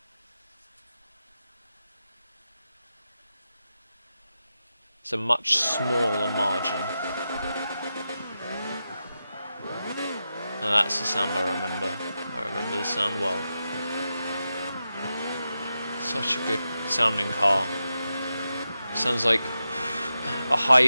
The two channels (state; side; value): inverted; both; correlation -0.90